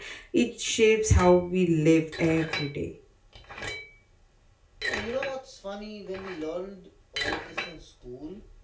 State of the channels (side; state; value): both; identical; correlation 1.00